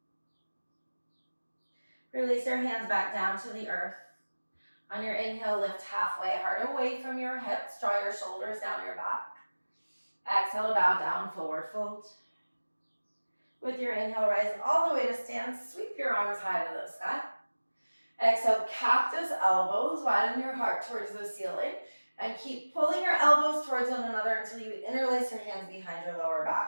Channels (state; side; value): inverted; both; correlation -1.00